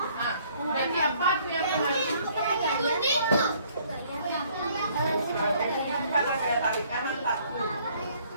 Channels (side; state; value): both; inverted; correlation -0.61